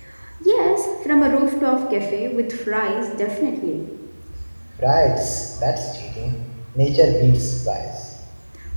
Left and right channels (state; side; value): inverted; both; correlation -1.00